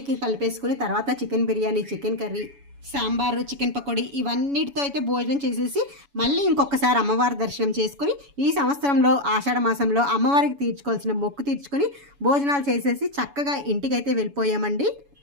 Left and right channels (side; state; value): left; late; 7.1 ms